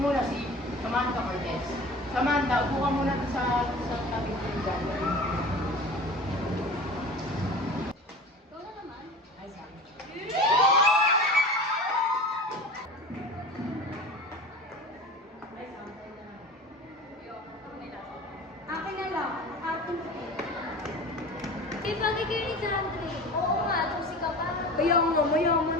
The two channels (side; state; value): both; normal; correlation 0.37